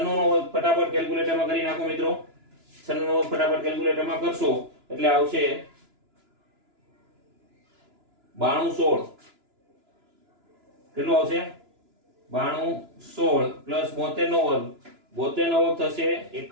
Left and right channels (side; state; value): left; late; 2.9 ms